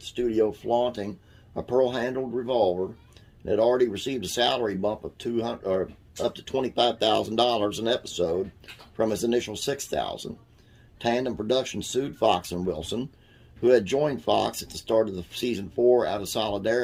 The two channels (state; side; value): identical; both; correlation 1.00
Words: studio flaunting a pearl-handled revolver and had already received a salary bump of up to $25,000 an episode from his initial $6,000. Tandem Productions sued Fox and Wilson, who had joined Fox at the start of the season 4 out of